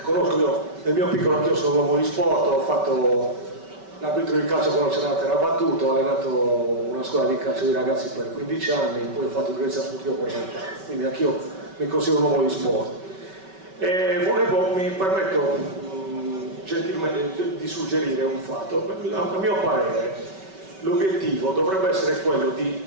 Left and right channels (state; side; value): late; left; 5.2 ms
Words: conosco. Io nel mio piccolo, anch'io sono un uomo di sport, ho fatto l'arbitro di calcio quando c'era la terra battuta, ho allenato una scuola di calcio di ragazzi per 15 anni, poi ho fatto direzione sportiva per 20 anni, quindi anch'io mi considero un uomo di sport. Mi permetto gentilmente di suggerire un fatto. A mio parere l'obiettivo dovrebbe essere quello